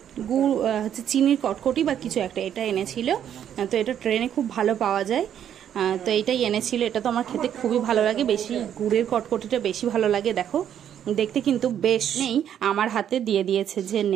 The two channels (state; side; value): quieter; left; 9.7 dB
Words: গুড় হচ্ছে চিনির কটকটি বা কিছু একটা, এটা এনেছিল। তো এটা ট্রেনে খুব ভালো পাওয়া যায়, তো এইটাই এনেছিল। এটা তো আমার খেতে খুবই ভালো লাগে, বেশি গুড়ের কটকটিটা বেশি ভালো লাগে। দেখো দেখতে কিন্তু বেশ। নেই, আমার হাতে দিয়ে দিয়েছে যে